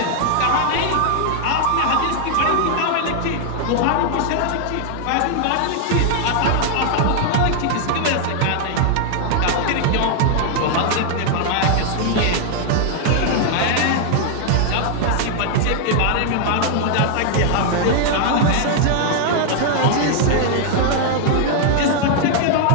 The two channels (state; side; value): different; both; correlation 0.00